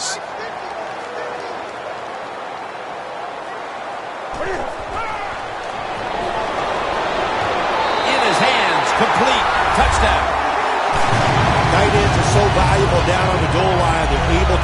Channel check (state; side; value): identical; both; correlation 1.00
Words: In his hands, complete, touchdown. Tight ends are so valuable down on the goal line. They're able